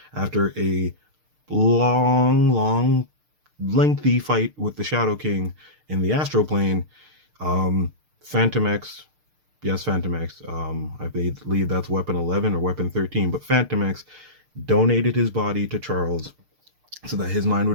after a long, lengthy fight with the Shadow King in the astral plane. Phantom X, yes, Phantom X. I believe that's Weapon 11 or Weapon 13, but Phantom X donated his body to Charles so that his mind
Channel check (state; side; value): late; left; 6.6 ms